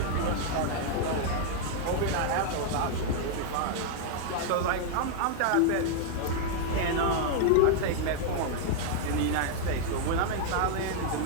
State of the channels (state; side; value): different; both; correlation 0.00